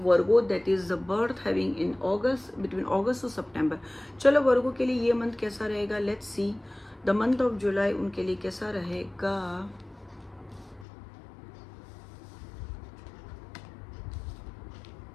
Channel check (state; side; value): drops out; right; at 10.9 s